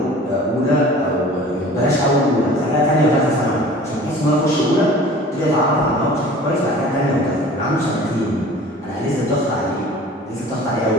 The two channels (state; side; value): normal; both; correlation 0.45